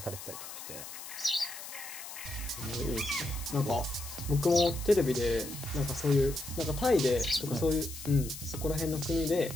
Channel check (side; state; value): left; noise; hiss, 11 dB below the sound